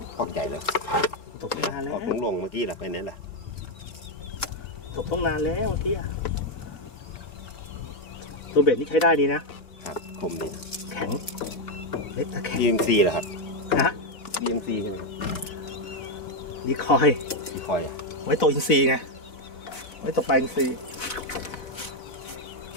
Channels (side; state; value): right; late; 4.0 ms